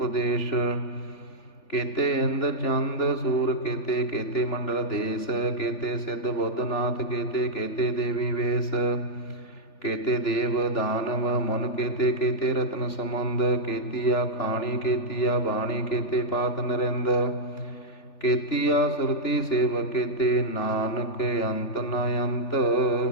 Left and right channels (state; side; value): late; right; 3.4 ms